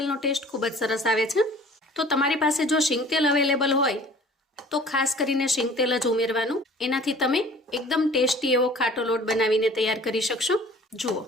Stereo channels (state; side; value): normal; both; correlation 0.49